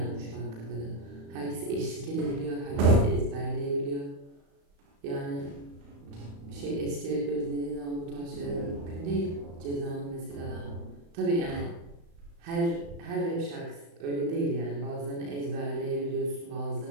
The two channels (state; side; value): late; left; 35 ms